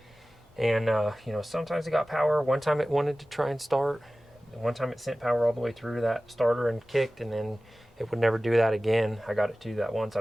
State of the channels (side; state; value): both; normal; correlation 0.97